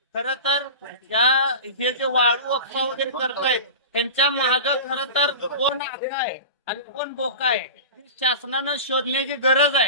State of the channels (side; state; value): both; inverted; correlation -0.31